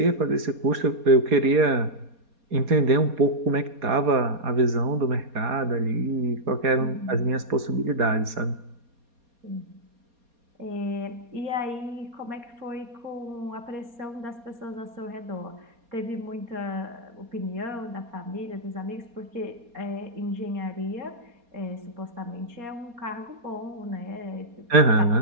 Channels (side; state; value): left; late; 4.2 ms